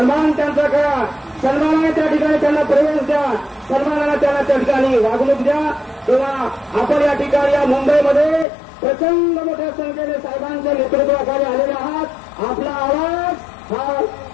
त्यांचा करा. सन्मानाने त्या ठिकाणी त्यांना प्रवेश द्या, सन्मानाने त्यांना त्या ठिकाणी वागणूक द्या. तेव्हा आपण या ठिकाणी या मुंबईमध्ये प्रचंड मोठ्या संख्येने साहेबांच्या नेतृत्वाखाली आलेले आहात. आपला आवाज हा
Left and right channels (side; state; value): right; drops out; at 8.5 s